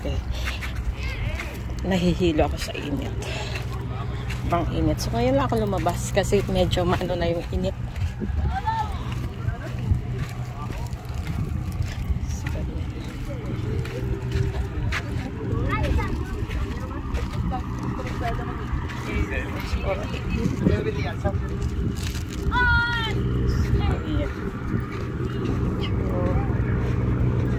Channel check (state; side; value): identical; both; correlation 1.00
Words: nahihilo ako sa init. Bang init. So ngayon lang ako lumabas kasi medyo maano na yung init.